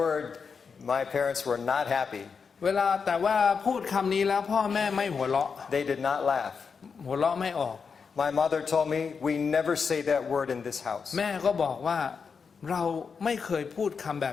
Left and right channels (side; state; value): right; quieter; 5.7 dB